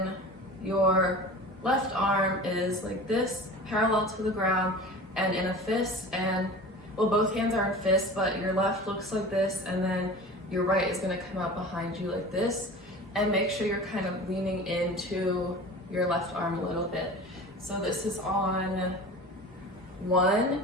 your left arm is like this, parallel to the ground and in a fist, and well, both hands are in fists, but your left looks like this, and then your right is going to come out behind you like this, and make sure you're kind of leaning into your left arm a little bit. So this is on 1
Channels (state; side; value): normal; both; correlation 0.36